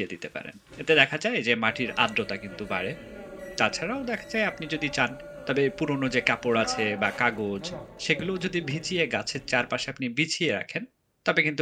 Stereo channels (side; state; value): both; identical; correlation 1.00